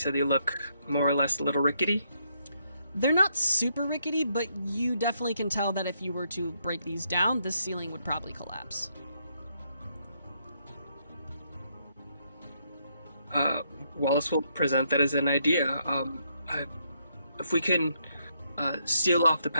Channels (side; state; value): both; inverted; correlation -0.75